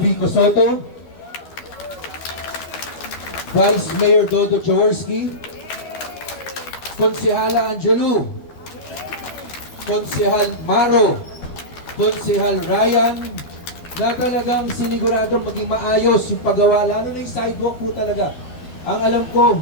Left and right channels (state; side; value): late; right; 12 ms